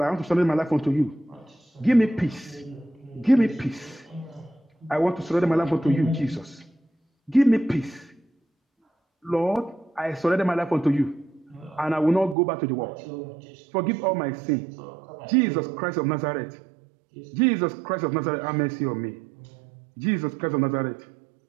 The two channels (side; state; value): left; drops out; at 12.4 s